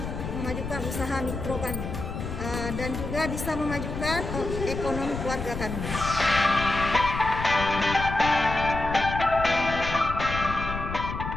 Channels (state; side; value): noise; left; rumble, 6 dB below the sound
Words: usaha mikro kami dan juga bisa memajukan ekonomi keluarga kami.